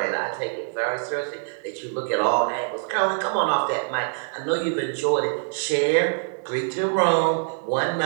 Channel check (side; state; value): left; silent; 59 dB below the other